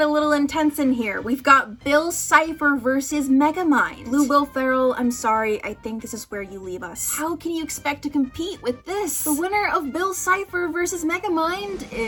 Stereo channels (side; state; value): both; identical; correlation 1.00